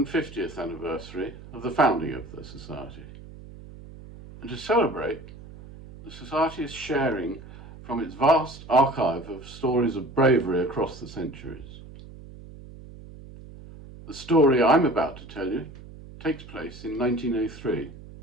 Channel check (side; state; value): right; noise; hum, 17 dB below the sound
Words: anniversary of the founding of the Society. And to celebrate, the Society is sharing from its vast archive of stories of bravery across the centuries. The story I'm about to tell you takes place in 1903.